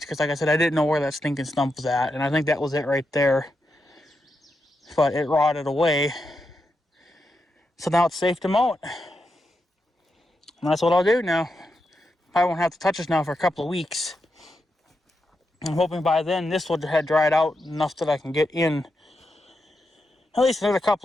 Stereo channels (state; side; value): normal; both; correlation 0.86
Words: because, like I said, I didn't know where that stinking stump was at. And I think that was it right there. But it rotted away. So now it's safe to mow it. And that's what I'll do now. I won't have to touch this now for a couple of weeks. I'm hoping by then this would have dried out enough that I can get in at least another